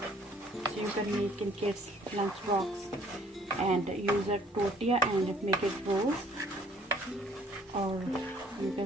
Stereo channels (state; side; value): normal; both; correlation 0.59